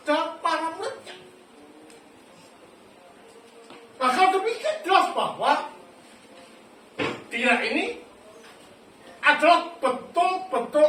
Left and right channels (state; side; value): identical; both; correlation 1.00